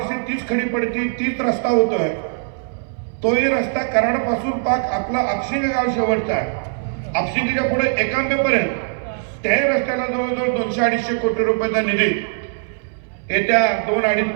तीच खडी पडती, तीच रस्ता होतोय. तोही रस्ता कराडपासून पाक आपला आपशिंग गाव शेवटचा आहे, आपशिंगीच्या पुढे एकांबेपर्यंत त्याही रस्त्याला जवळजवळ 200-250 कोटी रुपयाचा निधी येत्या 2-2.5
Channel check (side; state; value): left; silent; 61 dB below the other